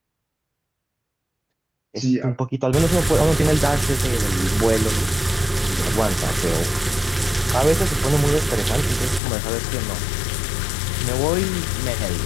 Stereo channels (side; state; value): right; drops out; at 9.2 s